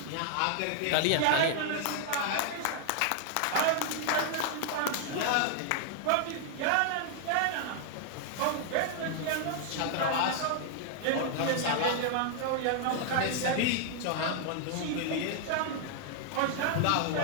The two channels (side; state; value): both; different; correlation 0.00